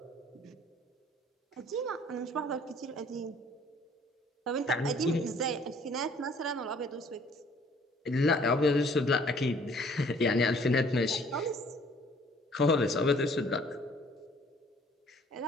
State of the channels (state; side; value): normal; both; correlation 0.57